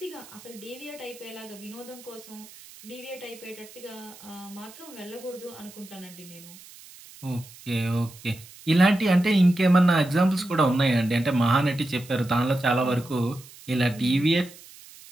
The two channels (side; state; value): right; noise; hiss, 20 dB below the sound